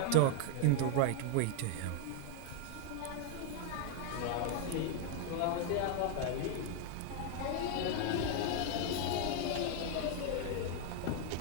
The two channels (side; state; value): both; different; correlation 0.00